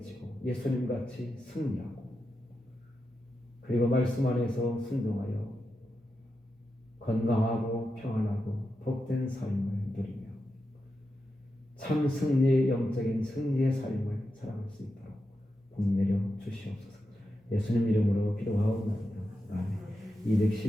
예수님같이 승리하고 그리고 말씀 안에서 순종하여 건강하고 평안하고 복된 삶을 누리며 참 승리의 영적인 승리의 삶을 살아갈 수 있도록 복 내려 주시옵소서. 예수님 이름으로 기도하옵나이다. 아멘.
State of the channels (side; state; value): both; normal; correlation 0.89